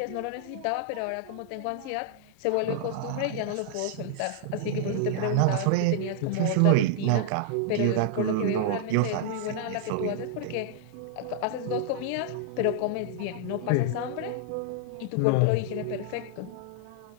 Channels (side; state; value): both; different; correlation -0.01